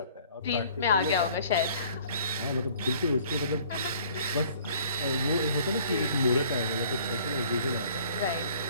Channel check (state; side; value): inverted; both; correlation -0.54